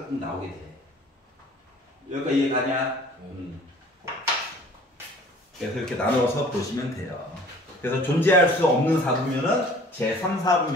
꼭 나오게 돼. 여기가 이해가냐? 그래서 이렇게 나눠서 보시면 돼요. 그래서 존재할 수 없는 사분면은 제3,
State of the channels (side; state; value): both; normal; correlation 0.50